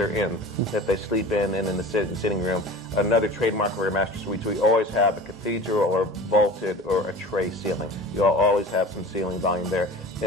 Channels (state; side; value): normal; both; correlation 0.38